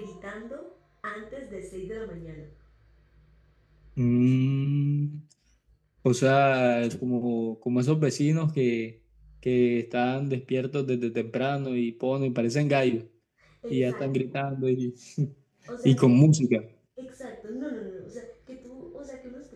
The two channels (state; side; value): identical; both; correlation 1.00